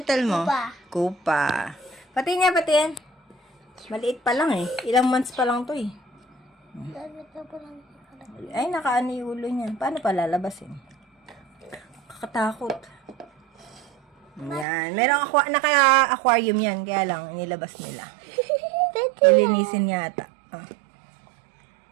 mo? Kupa. Kupa. Pati niya, pati yan. Maliit pa lang eh. Ilang months pa lang to eh. Ay, nakaano yung ulo niya. Paano pa lalabasin? Kakatakot. Yan. Merong naka-aquarium yan. Kaya lang, inilabas nila. Lilinisin yata. Ah.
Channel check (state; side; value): drops out; left; at 14.7 s